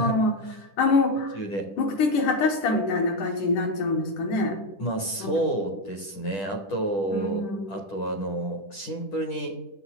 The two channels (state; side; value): late; right; 10 ms